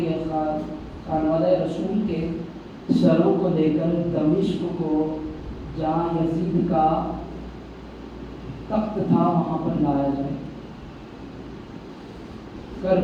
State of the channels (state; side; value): identical; both; correlation 1.00